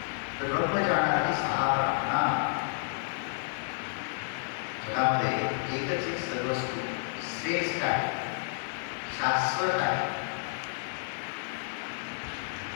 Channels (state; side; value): silent; right; digital silence